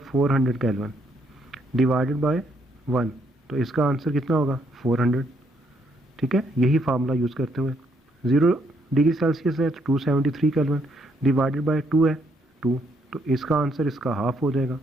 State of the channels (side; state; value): both; normal; correlation 0.72